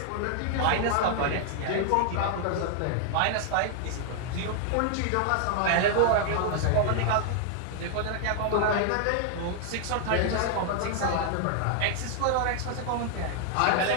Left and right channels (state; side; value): different; both; correlation 0.00